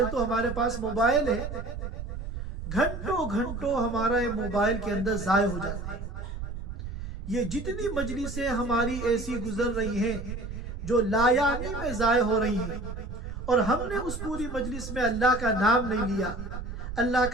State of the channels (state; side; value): noise; right; rumble, 7 dB below the sound